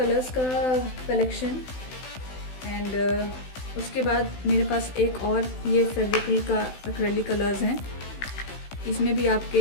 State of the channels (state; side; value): late; right; 16 ms